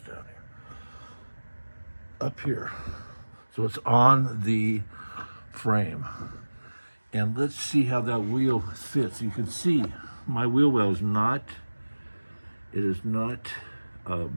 down here. Up here. So it's on the frame. And let's see how that wheel fits. You can see my wheel well is not, it is not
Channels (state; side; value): inverted; both; correlation -1.00